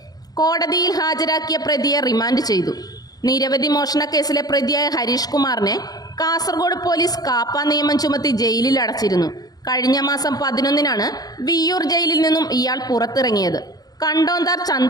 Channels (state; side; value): late; right; 0.19 ms